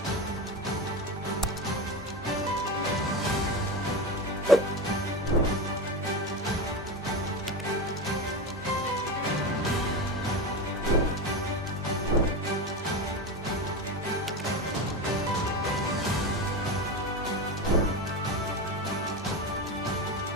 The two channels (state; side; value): normal; both; correlation 0.21